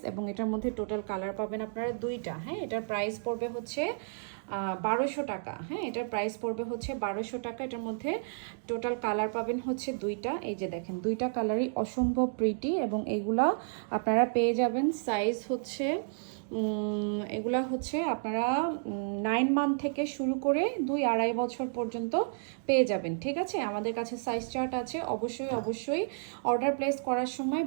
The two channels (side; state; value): left; silent; digital silence